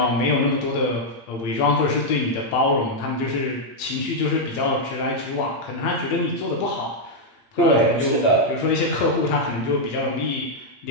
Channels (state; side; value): late; right; 8.7 ms